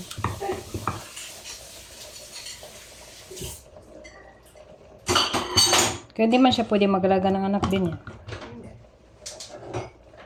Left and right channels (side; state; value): both; identical; correlation 1.00